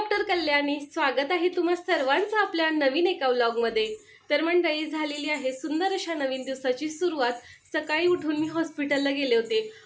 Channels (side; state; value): both; identical; correlation 1.00